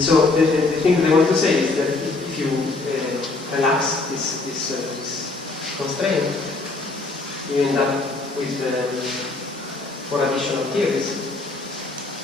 the thing that I want to say is that if you relax this constraint, you end up with 4 additional theories.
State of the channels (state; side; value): quieter; right; 3.5 dB